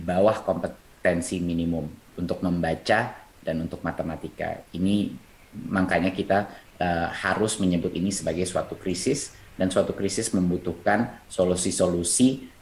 kompetensi minimum untuk membaca dan untuk matematika. Ini makanya kita harus menyebut ini sebagai suatu krisis, dan suatu krisis membutuhkan solusi-solusi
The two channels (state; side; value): identical; both; correlation 1.00